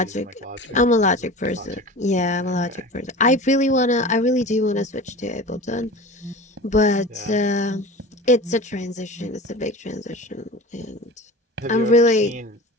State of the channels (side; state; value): both; normal; correlation 0.35